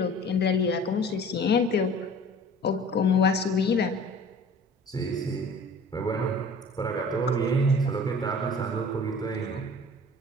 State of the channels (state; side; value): normal; both; correlation 0.45